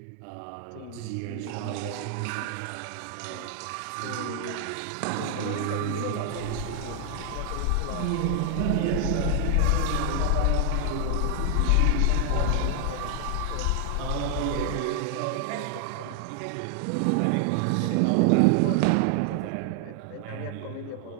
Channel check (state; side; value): different; both; correlation 0.00